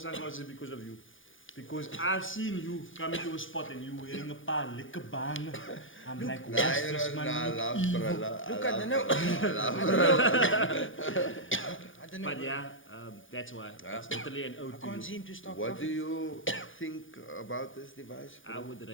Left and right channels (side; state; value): right; late; 0.57 ms